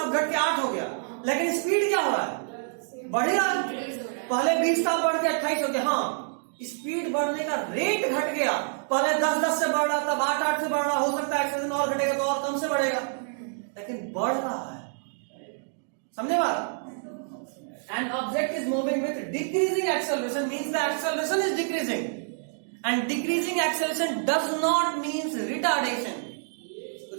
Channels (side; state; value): left; silent; digital silence